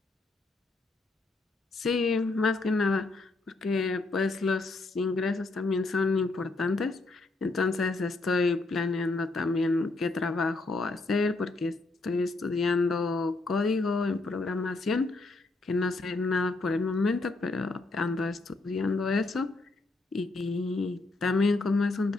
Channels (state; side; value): quieter; right; 3.3 dB